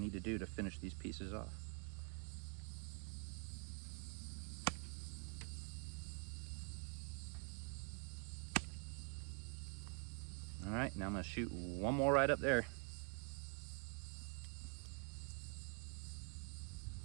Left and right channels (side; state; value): left; quieter; 35.8 dB